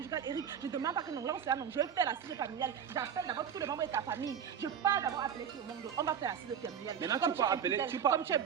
Eric, je ne demande pas que non, là on là, non, je vais faire la cise familiale. J'appelle d'abord tous les membres de ta famille. Je pars d'abord appeler tout le monde. On va faire la cise familiale. Maintenant, Comme tu peux es appeler, infidèle, tu peux- Comme tu es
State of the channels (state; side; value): quieter; left; 8.1 dB